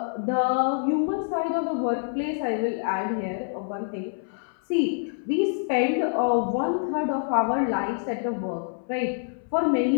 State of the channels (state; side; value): silent; right; 58 dB below the other